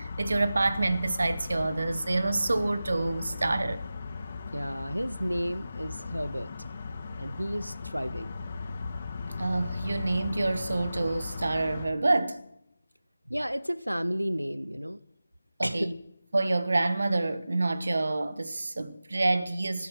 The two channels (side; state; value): both; inverted; correlation -0.96